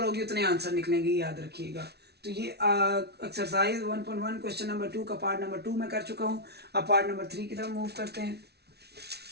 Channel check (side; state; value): left; late; 0.48 ms